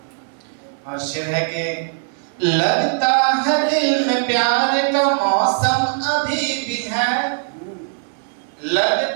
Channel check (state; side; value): silent; left; digital silence